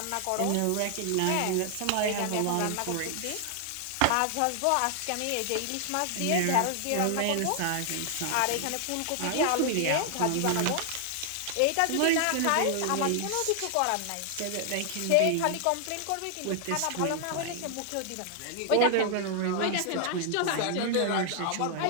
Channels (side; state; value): both; different; correlation 0.00